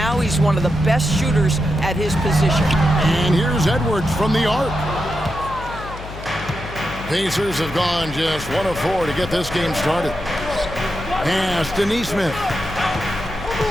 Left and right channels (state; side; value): noise; left; hum, 12 dB below the sound